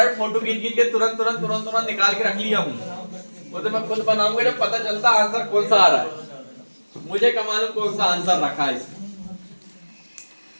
फोटो खींच के तुरंत निकाल के रख लिया हूँ। वो तो मैं खुद बनाऊंगा जब पता चलता आंसर कौन सा आ रहा है। मुझे कमालूम कौन सा आंसर रखा है इसमें।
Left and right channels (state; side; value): inverted; both; correlation -1.00